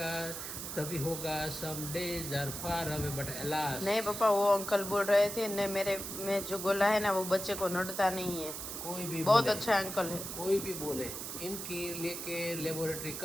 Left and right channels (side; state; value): right; noise; hiss, 6 dB below the sound